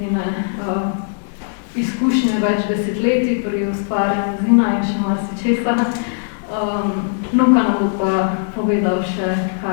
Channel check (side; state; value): right; silent; digital silence